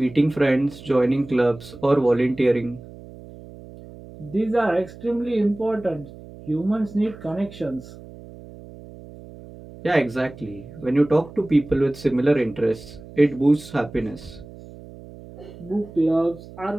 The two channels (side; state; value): right; noise; hum, 17 dB below the sound